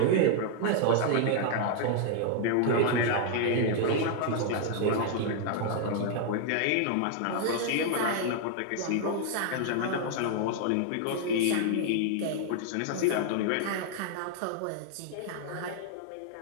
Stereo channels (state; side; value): different; both; correlation 0.00